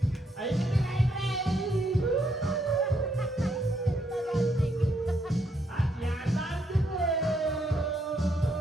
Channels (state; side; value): normal; both; correlation 0.75